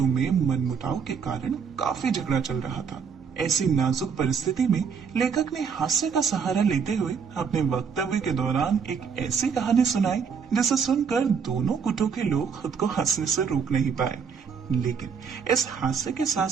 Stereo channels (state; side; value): quieter; left; 6.3 dB